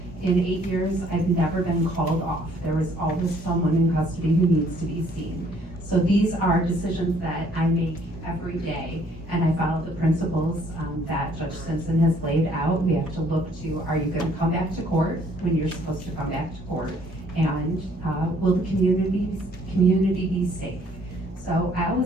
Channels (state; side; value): normal; both; correlation 0.62